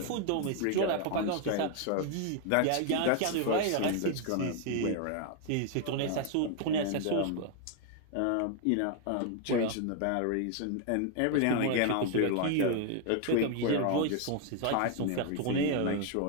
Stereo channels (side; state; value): both; different; correlation 0.00